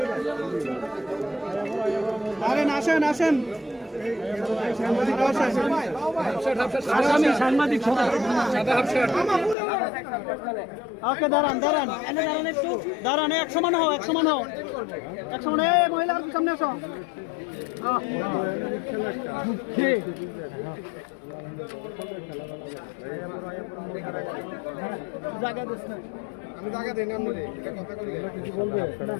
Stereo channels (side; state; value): right; drops out; at 9.6 s